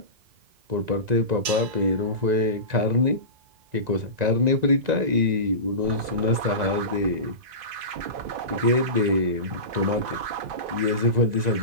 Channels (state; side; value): late; left; 1.9 ms